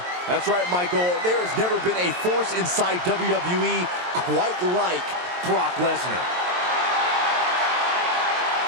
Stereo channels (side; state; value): left; late; 23 ms